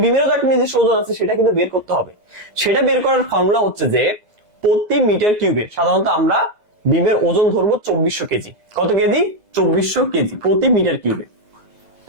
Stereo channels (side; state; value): left; late; 2.0 ms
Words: বিমেরও তো একটা নিজস্ব ওজন আছে, সেটা কিন্তু বের করতে হবে। সেটা বের করার ফর্মুলা হচ্ছে যে প্রতি মিটার কিউবে সাধারণত আমরা বিমের ওজন ধরবো 2400 কেজি। কত কেজি, 2400 কেজি প্রতি মিটার কিউবে।